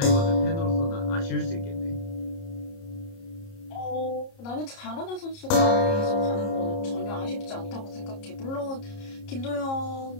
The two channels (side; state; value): right; late; 30 ms